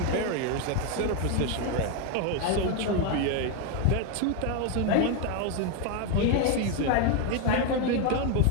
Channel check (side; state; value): both; different; correlation 0.01